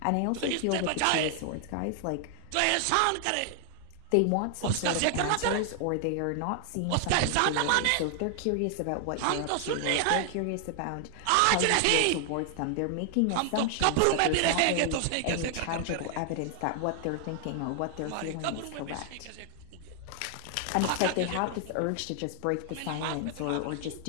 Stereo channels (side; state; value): both; different; correlation 0.00